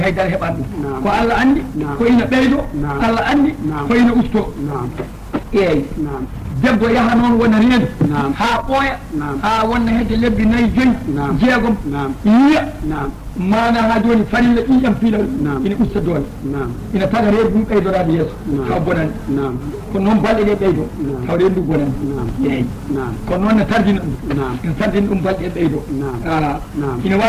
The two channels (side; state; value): both; identical; correlation 1.00